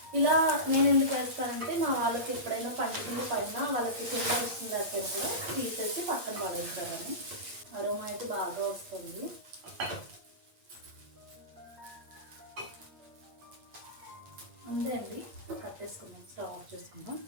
ఇలా నేను ఎందుకు వేస్తానంటే మా వాళ్ళకి ఎప్పుడైనా పండుగ పైన వాళ్ళకి కింద వస్తుంది లేకపోయినా కూడా తీసేసి పక్కన పడేస్తారని. అరోమా అయితే బాగా వస్తుంది. అంతే అండి, కట్టేసుకుందాం, స్టవ్ ఆఫ్ చేసుకుందాం.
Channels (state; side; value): late; left; 8.6 ms